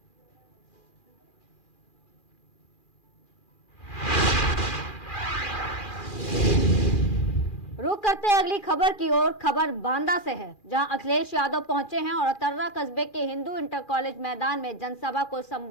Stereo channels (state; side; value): late; right; 2.4 ms